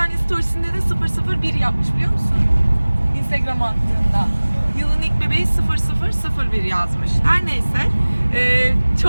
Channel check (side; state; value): both; inverted; correlation -1.00